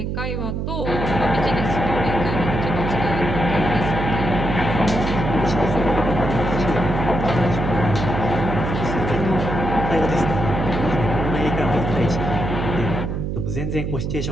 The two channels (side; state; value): right; noise; hum, 2 dB below the sound